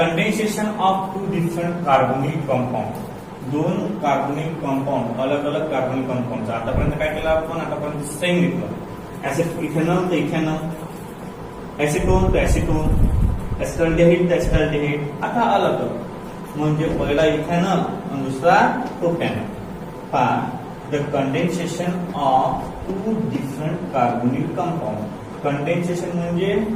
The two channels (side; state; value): both; identical; correlation 1.00